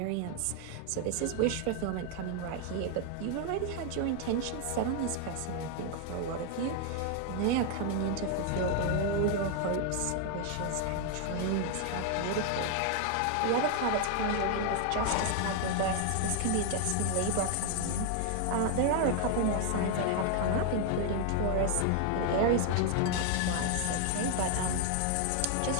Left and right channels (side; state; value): both; different; correlation 0.00